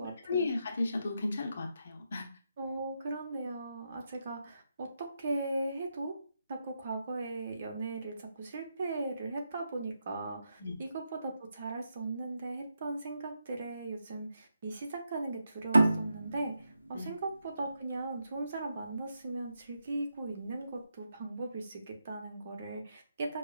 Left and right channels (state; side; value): inverted; both; correlation -0.83